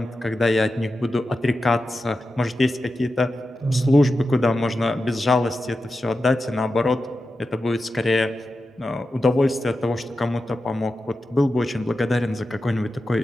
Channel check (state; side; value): normal; both; correlation 0.91